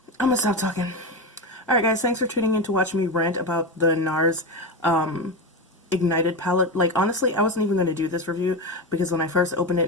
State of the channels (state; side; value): normal; both; correlation 0.17